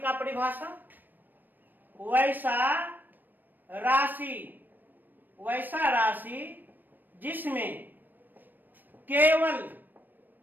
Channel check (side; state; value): left; late; 0.090 ms